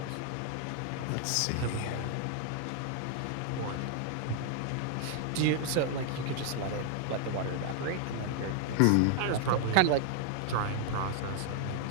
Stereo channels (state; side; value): different; both; correlation 0.00